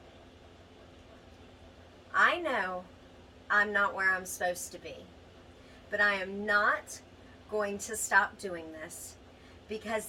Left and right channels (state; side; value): identical; both; correlation 1.00